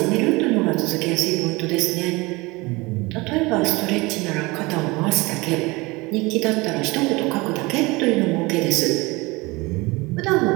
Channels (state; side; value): quieter; left; 23.6 dB